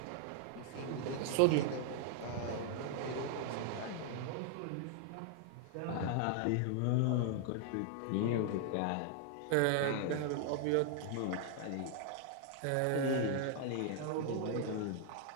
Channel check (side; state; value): both; different; correlation 0.00